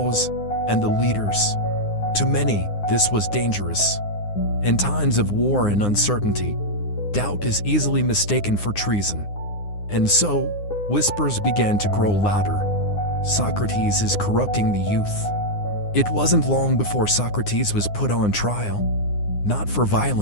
and the leaders. To many, this was dangerous. In times of war and uncertainty, doubt is easily mistaken for treason. And so, whispers began to grow louder. Socrates is corrupting the youth. It wasn't long before Socrates was put on trial, not for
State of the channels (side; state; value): right; late; 9.7 ms